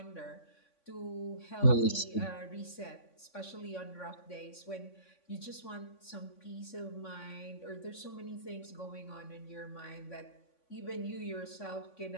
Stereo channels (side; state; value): right; late; 3.5 ms